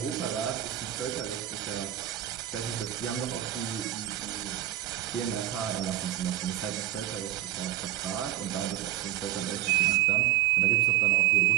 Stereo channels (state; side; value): quieter; left; 13.6 dB